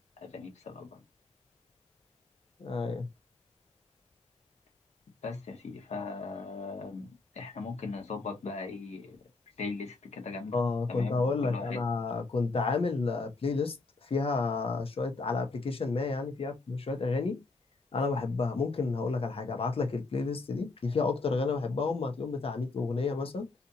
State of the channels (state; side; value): quieter; right; 3.7 dB